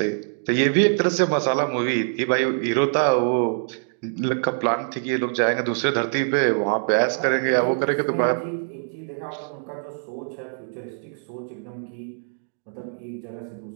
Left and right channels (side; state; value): left; silent; digital silence